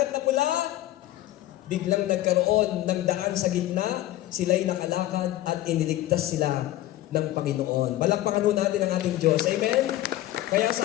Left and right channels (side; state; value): right; quieter; 14.9 dB